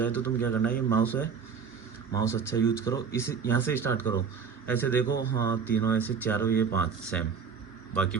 तो तुम क्या करना है, ये माउस है, माउस अच्छा यूज करो, इस यहाँ से स्टार्ट करो, ऐसे देखो, हाँ तीनों ऐसे, चारों ये 5 सेम,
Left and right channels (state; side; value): quieter; left; 6.3 dB